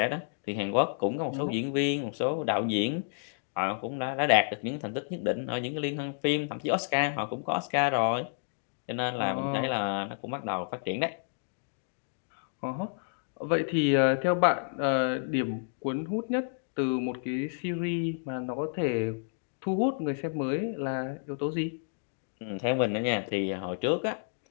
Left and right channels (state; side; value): silent; right; digital silence